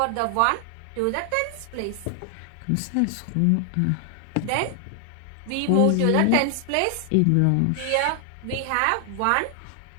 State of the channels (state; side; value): different; both; correlation 0.00